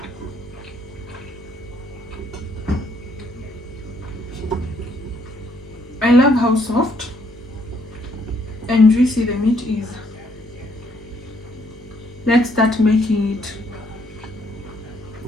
I love how soft and juicy the meat is. Let's start making it.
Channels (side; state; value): both; normal; correlation 0.69